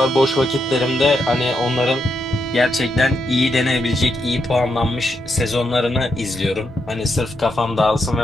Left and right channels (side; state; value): both; normal; correlation 0.82